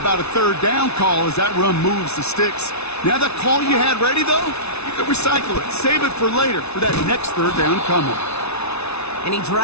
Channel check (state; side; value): late; right; 0.80 ms